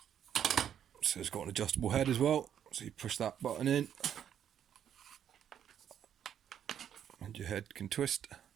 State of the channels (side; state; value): left; quieter; 9.4 dB